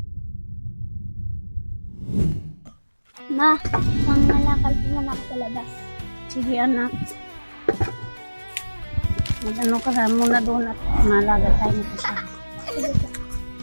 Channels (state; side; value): inverted; both; correlation -1.00